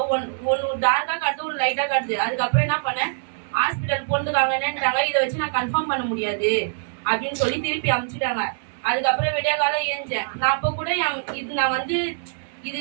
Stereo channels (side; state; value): left; silent; digital silence